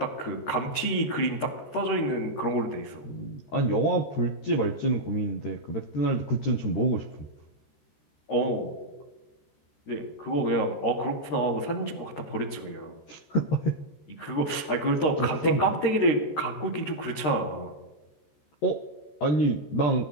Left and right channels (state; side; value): late; right; 13 ms